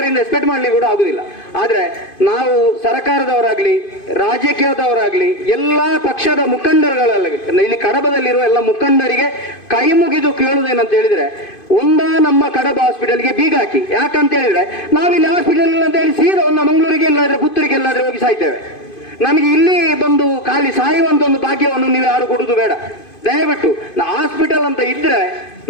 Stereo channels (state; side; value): late; right; 2.5 ms